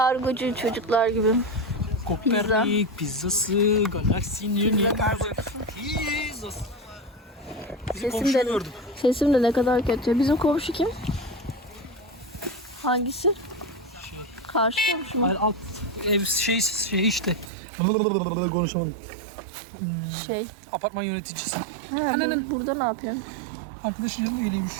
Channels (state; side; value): drops out; left; at 17.5 s